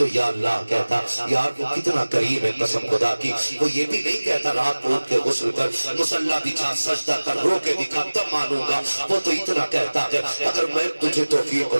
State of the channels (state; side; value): inverted; both; correlation -1.00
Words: یا اللہ کہتا. یار وہ کتنا قریب ہے قسم خدا کی. وہ یہ بھی نہیں کہتا رات کو اٹھ کے غسل کر، مصلی بچھا، سجدہ کر، رو کے دکھا تب مانوں گا. وہ تو اتنا کہتا ہے اگر میں تجھے توفیق